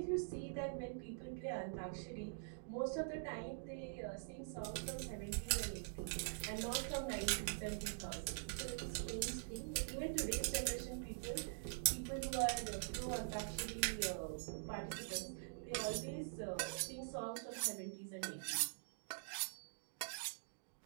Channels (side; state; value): left; silent; digital silence